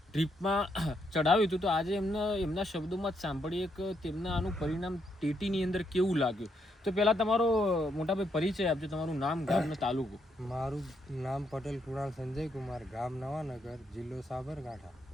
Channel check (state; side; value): normal; both; correlation 0.77